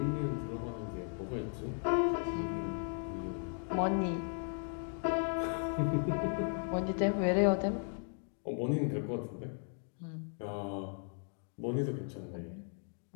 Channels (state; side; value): silent; right; 53 dB below the other